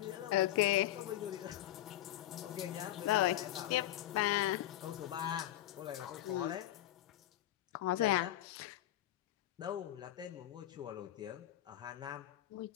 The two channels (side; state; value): right; quieter; 13.9 dB